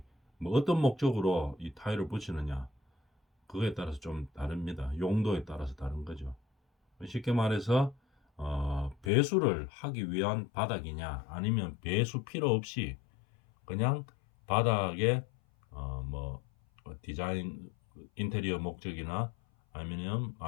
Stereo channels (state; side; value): drops out; right; at 9.1 s